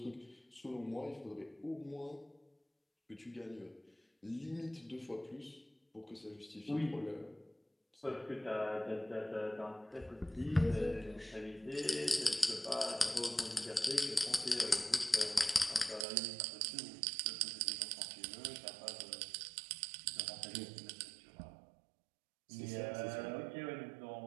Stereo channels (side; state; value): left; drops out; at 16.1 s